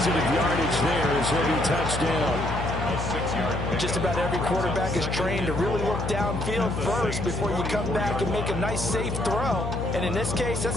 yardage there as he'll be touched down. Just about every quarterback is trained to really look downfield first before you come back and make a nice, safe throw. And in this case,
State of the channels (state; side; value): noise; left; hum, 4 dB below the sound